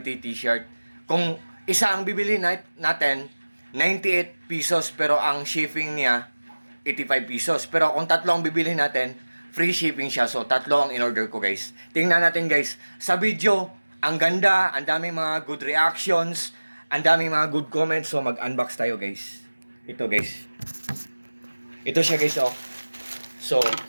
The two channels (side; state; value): both; inverted; correlation -1.00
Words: t-shirt. Kung isa ang bibili natin, 98 pesos pero ang shipping niya 85 pesos. Pero kung tatlo ang bibili natin, free shipping siya. So tatlo ang in-order ko guys. Tingnan natin guys. Sa video, ang ganda, ang daming mga good reactions, ang daming mga good comments. So mag-unbox tayo guys. Ito guys. Ito siya guys oh. So,